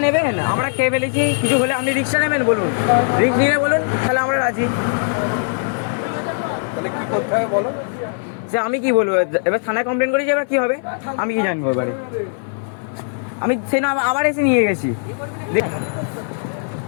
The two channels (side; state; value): right; silent; 58 dB below the other